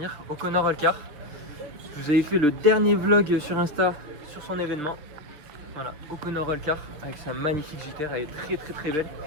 O'Connor Allcar. Je vous avais fait le dernier vlog sur Insta sur son événement. Voilà, O'Connor Allcar avec sa magnifique JTR, elle est très belle.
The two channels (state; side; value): late; left; 6.7 ms